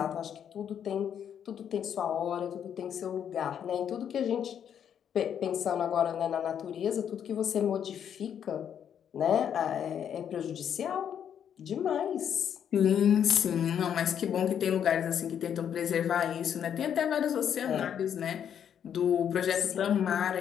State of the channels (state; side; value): quieter; right; 8.8 dB